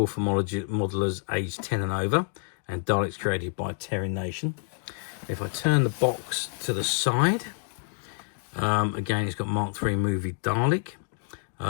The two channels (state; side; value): silent; right; 60 dB below the other